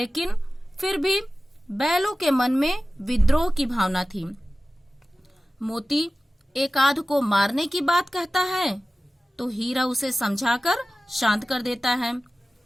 फिर भी बैलों के मन में विद्रोह की भावना थी। मोती एक आध को मारने की बात कहता है तो हीरा उसे समझाकर शांत कर देता है।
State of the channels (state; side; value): normal; both; correlation 0.95